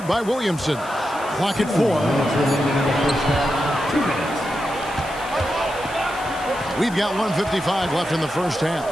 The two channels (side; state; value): left; noise; hiss, 19 dB below the sound